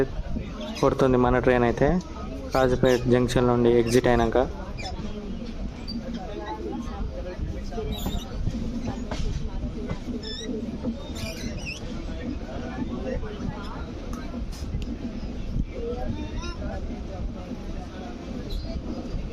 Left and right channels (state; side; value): identical; both; correlation 1.00